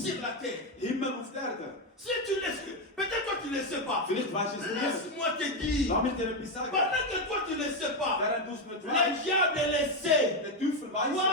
sur la terre. Himmel auf der Erde. Si tu laisses, peut-être toi tu ne le sais pas. Vielleicht weißt du es nicht. Laisse-moi te dire, Lass mich dir etwas sagen. pendant que toi tu ne le sais pas, Während du es nicht le weißt, diable le sait. der Teufel Toi weiß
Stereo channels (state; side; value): normal; both; correlation 0.07